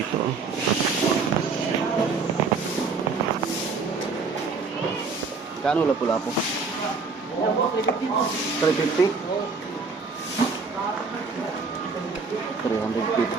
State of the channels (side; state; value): left; quieter; 4.5 dB